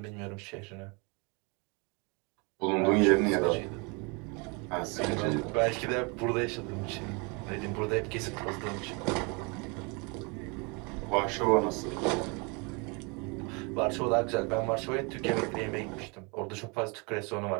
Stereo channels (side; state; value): left; quieter; 30.9 dB